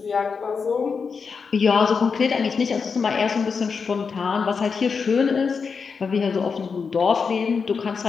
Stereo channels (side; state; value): right; quieter; 5.5 dB